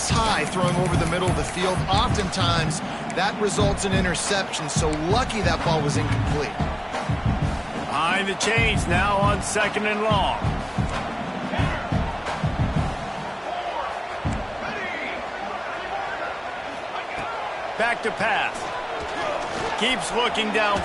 high throwing over the middle of the field, oftentimes that results in interception. So lucky that ball was incomplete. Behind Trying to change now on 2nd and long. Back to pass. Keeps looking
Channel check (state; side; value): identical; both; correlation 1.00